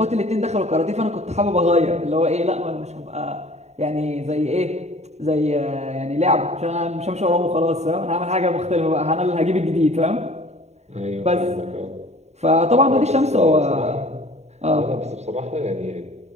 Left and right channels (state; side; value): late; left; 0.32 ms